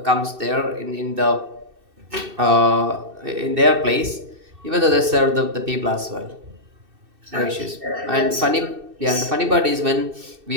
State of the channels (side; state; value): left; late; 2.6 ms